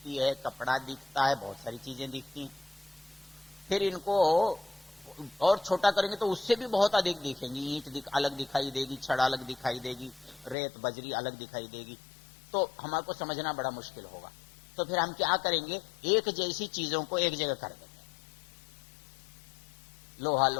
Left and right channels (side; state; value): right; drops out; at 10.6 s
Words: है, कपड़ा दिखता है, बहुत सारी चीजें दिखती हैं। फिर इनको और छोटा करेंगे तो उससे भी बहुत अधिक दिखेंगी। ईंट अलग दिखाई देगी, छड़ अलग दिखाई देगी, रेत बजरी अलग दिखाई देगी, तो हमारे को समझना बड़ा मुश्किल होगा। तो फिर हम क्या करेंगे? एक जैसी चीजों को एक जगह कर देंगे।